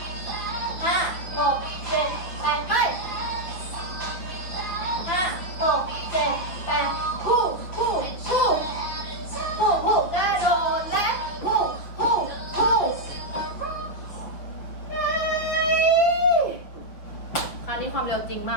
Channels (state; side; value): late; right; 6.1 ms